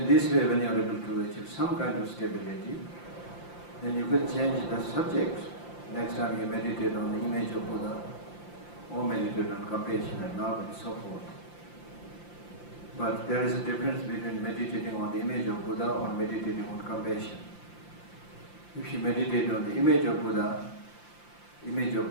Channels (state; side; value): late; right; 5.8 ms